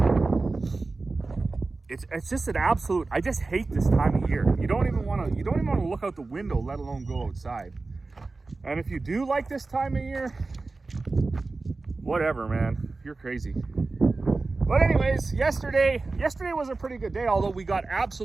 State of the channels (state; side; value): quieter; left; 3.6 dB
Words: It's just an absolute. I just hate this time of year. You don't even want to look out the window, let alone go outside. And if you do like this time of year, whatever, man, you're crazy. But anyways, yesterday was a pretty good day, although we got